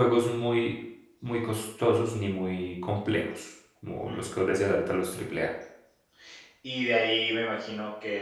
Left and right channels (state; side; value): identical; both; correlation 1.00